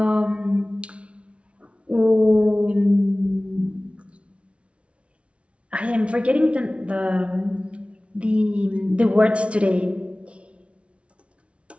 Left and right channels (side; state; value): left; late; 0.061 ms